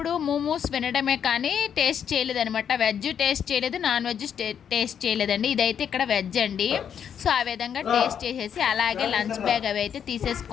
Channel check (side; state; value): right; quieter; 8.3 dB